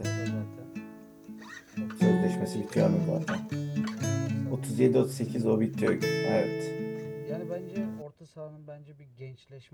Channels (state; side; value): identical; both; correlation 1.00